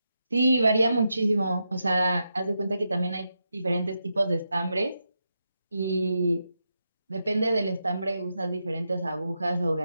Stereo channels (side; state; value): both; inverted; correlation -0.86